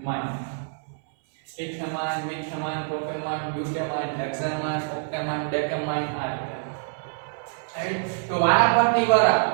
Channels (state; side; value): silent; left; 59 dB below the other